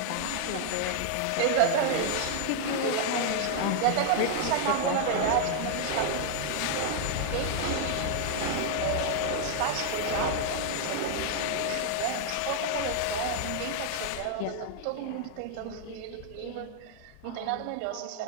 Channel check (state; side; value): different; both; correlation 0.00